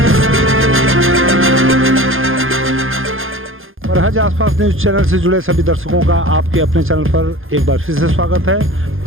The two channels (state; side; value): late; left; 0.59 ms